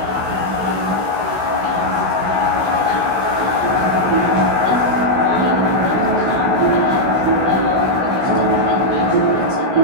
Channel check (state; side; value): late; left; 16 ms